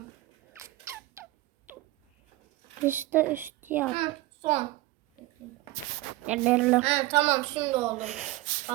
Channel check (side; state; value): left; quieter; 18.4 dB